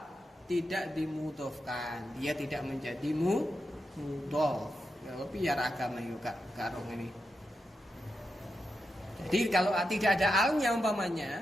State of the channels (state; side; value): normal; both; correlation 0.87